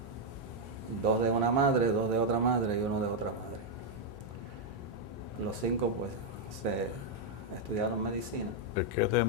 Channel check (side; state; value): both; normal; correlation -0.01